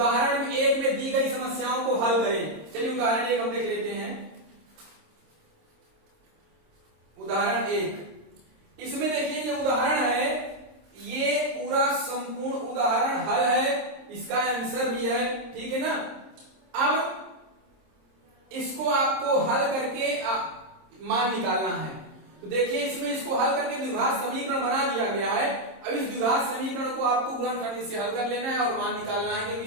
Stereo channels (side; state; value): left; late; 26 ms